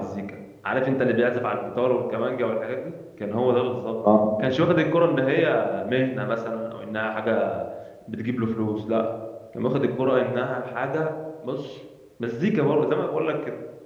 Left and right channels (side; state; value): both; identical; correlation 1.00